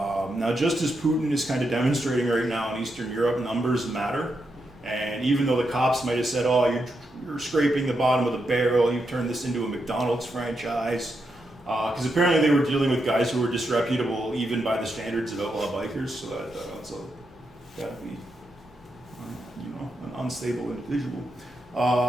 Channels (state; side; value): normal; both; correlation 0.84